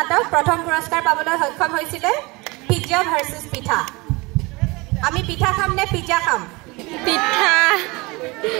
প্ৰথম পুৰস্কাৰ পাবলৈ সক্ষম হৈছিলে পিজ্জা ভাৰ্চেছ পিঠা। আমি পিঠা খাম নে পিজ্জা খাম? পিঠা।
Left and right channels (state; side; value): quieter; left; 24.8 dB